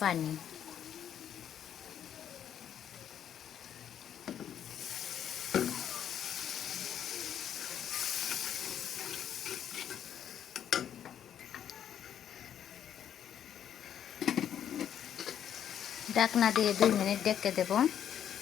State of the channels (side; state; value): right; quieter; 9.6 dB